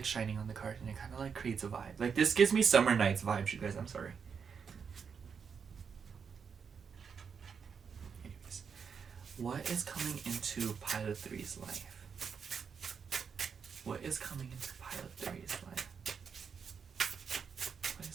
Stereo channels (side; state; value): left; quieter; 6.4 dB